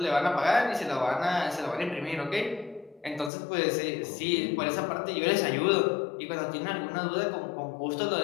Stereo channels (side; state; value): right; drops out; at 3.3 s